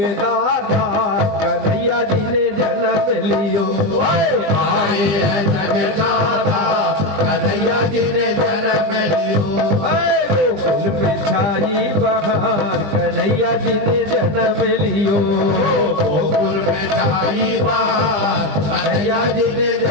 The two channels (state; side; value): late; left; 20 ms